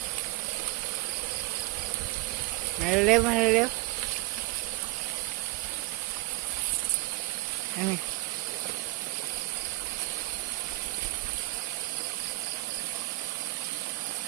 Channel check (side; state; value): left; quieter; 22.7 dB